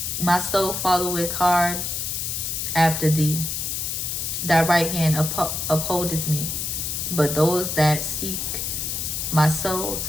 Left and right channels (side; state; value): left; noise; hiss, 2 dB below the sound